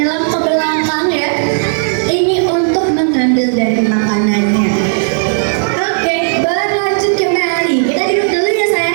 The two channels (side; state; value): left; silent; digital silence